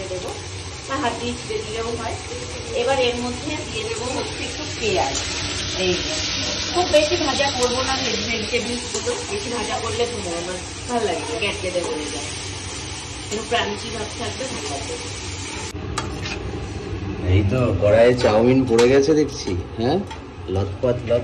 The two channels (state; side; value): identical; both; correlation 1.00